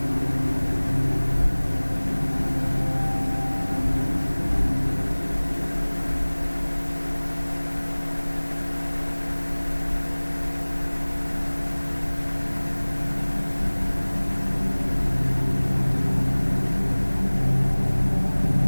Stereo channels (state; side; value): inverted; both; correlation -1.00